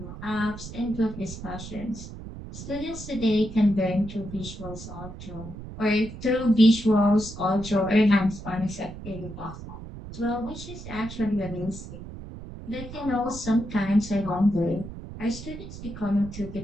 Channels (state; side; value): noise; right; rumble, 12 dB below the sound